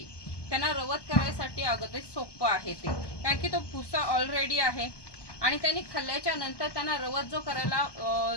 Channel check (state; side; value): late; right; 1.2 ms